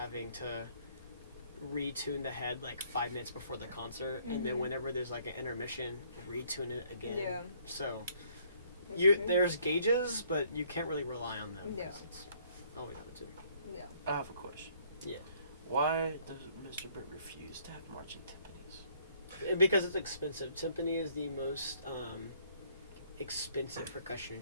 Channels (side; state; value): both; inverted; correlation -0.63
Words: to retune the head like 5 minutes before the concert, and then whenever there's like an intermission, retune it again. Yeah. So That's crazy. there's gauges, but you can't really rely on them. Yeah. 'Cause it's always out of tune. Yeah. I have a question. Yeah. Why does Mr. Britt refuse to have marching timpanis? Because it's expensive. Timpani is the most expensive percussion